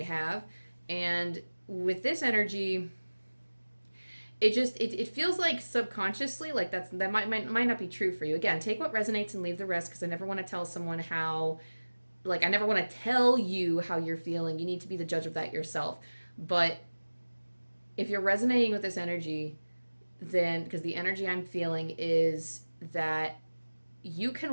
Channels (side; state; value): both; inverted; correlation -1.00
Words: have. And with this energy, it feels like subconsciously, like that might not be true for you. Again, take what resonates and leave the rest, because I never want to tell someone how, like, I never want to tell you how you're feeling. You need to be the judge of that yourself. But if you're resonating with this energy, then, because the energy I'm feeling is that you